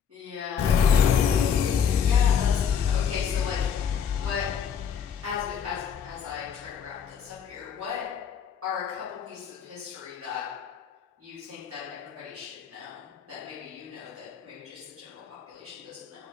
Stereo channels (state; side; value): quieter; right; 7.5 dB